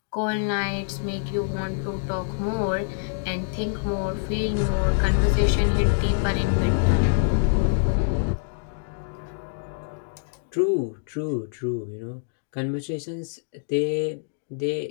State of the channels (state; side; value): silent; right; digital silence